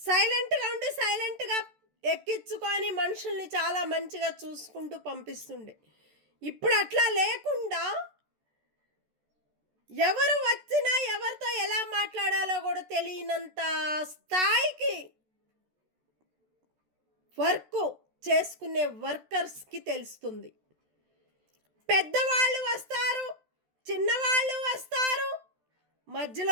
సైలెంట్గా ఉండి సైలెంట్గా ఎక్కించుకొని మనుషుల్ని చాలా మంచిగా చూసుకుంటూ పంపిస్తుండే. ఇప్పుడు అట్లా లేకుండా ఎవరు వచ్చినా ఎవరితో ఎలా మాట్లాడాలో కూడా తెలియనంత స్థాయికి వర్క్ చేసుకునే వర్కర్స్కి తెలుస్తుంది. పెద్దవాళ్ళు వస్తారు, చిన్నవాళ్ళు వస్తారు,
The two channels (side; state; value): left; late; 14 ms